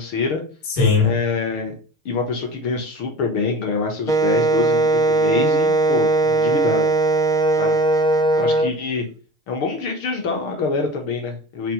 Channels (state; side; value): late; right; 6.6 ms